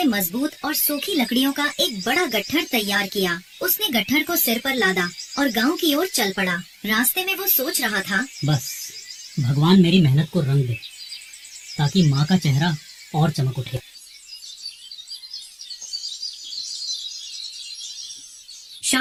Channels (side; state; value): both; identical; correlation 1.00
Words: मजबूत और सूखी लकड़ियों का एक बड़ा गट्ठर तैयार किया। उसने गट्ठर को सिर पर लादा और गांव की ओर चल पड़ा। रास्ते में वो सोच रहा था, बस भगवान मेरी मेहनत को रंग दे ताकि माँ का चेहरा और चमक उठे।